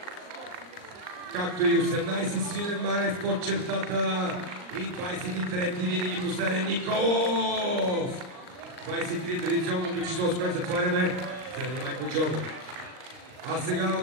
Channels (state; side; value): late; left; 39 ms